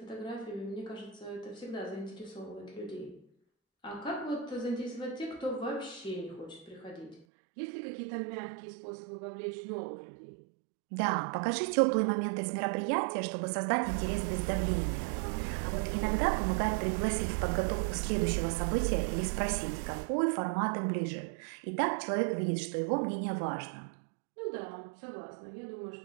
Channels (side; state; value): left; drops out; at 7.2 s